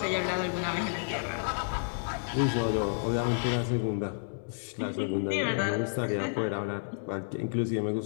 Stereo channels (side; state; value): right; silent; digital silence